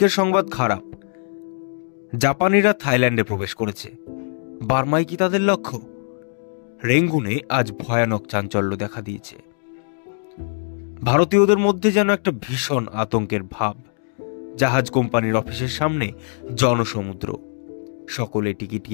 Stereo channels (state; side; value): silent; right; digital silence